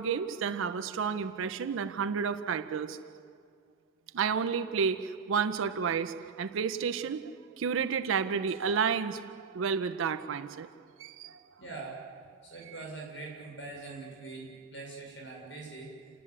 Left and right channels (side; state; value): left; quieter; 5.9 dB